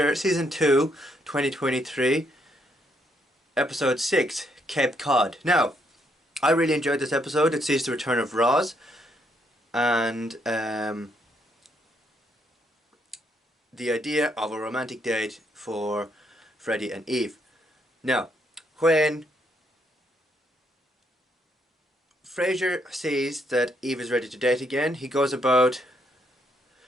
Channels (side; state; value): both; normal; correlation 0.74